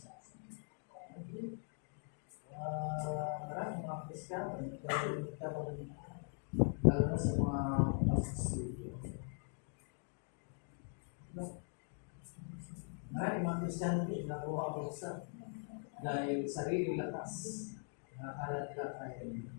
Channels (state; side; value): silent; right; 50 dB below the other